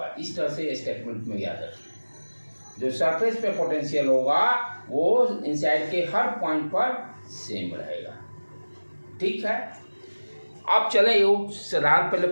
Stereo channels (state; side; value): inverted; both; correlation -1.00